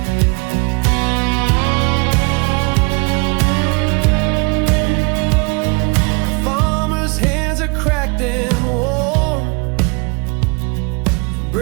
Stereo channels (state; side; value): quieter; left; 30.6 dB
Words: Farmer's hands are cracked and worn,